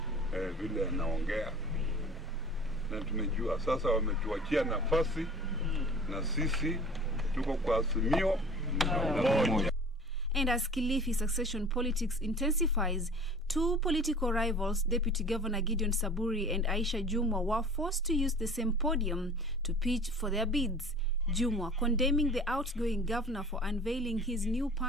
vile anaongea. Na tumejua sasa wametuachia nafasi na sisi tuko kwa Azimio moja. And as Kilifi succession politics intensifies, two political rivals, Deputy Governor Gideon Samburu and Aisha Jumwa, were forced to use the same podium to pitch for their bids. Jumwa condemning the outgoing governor for unveiling his new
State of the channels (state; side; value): normal; both; correlation 0.43